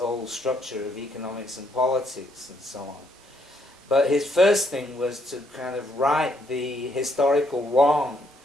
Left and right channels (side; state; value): both; normal; correlation 0.72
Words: structure of economics and politics and so on. But his first thing was to kind of right the historical wrong